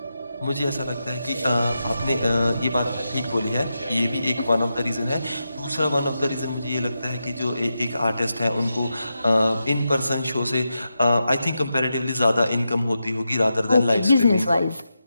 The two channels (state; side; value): inverted; both; correlation -0.88